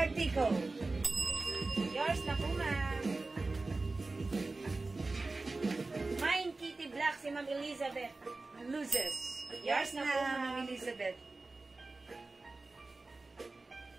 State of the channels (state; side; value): quieter; left; 3.4 dB